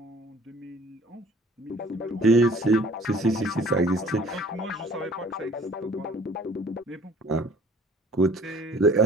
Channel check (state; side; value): normal; both; correlation 0.53